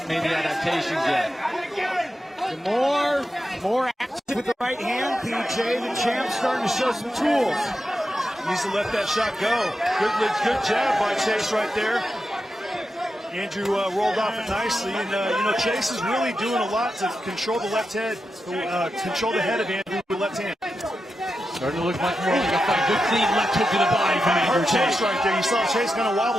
made the adaptations yet. Demoor, more active with the right hand. PJ, the champ, starting to show some tools. Needs to let that shot go. Good jab by Chase right there. Andrew rolled off it nicely, and you know, Chase is really doing a lot to control the left head, control the head of Andrew with the left hand. Starting to look much more like a fight. Good clean left hook to the body from Andrew Tate. Chase right there. You saw Chase kind of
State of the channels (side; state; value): both; normal; correlation 0.89